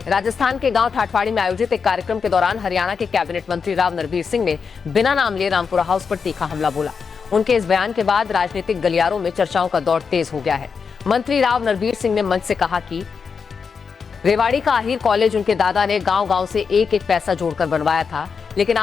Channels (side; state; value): right; quieter; 5.7 dB